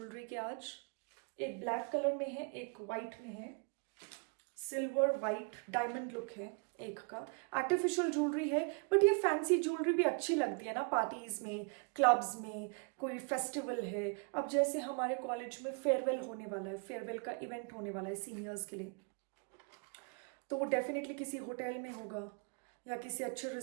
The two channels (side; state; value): left; quieter; 36.8 dB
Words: के आज. एक ब्लैक कलर में है, एक वाइट में है, सिल्वर वाइट डायमंड लुक है एक का. आर्टिफिशियल ज्वेलरी है, बट ये फैंसी ज्वेलरी भी अच्छी लगती है ना पार्टीज में, क्लब्स में, कोई फेस्टिवल है. अब जैसे हमारे कॉलेज में फेयरवेल होने वाला है, फेयरवेल का इवेंट होने वाला है सीनियर्स के लिए, तो वो डेफिनेटली किसी होटल में होगा या किसी अच्छे